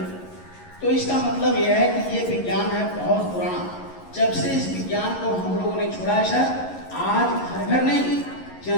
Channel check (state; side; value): late; right; 11 ms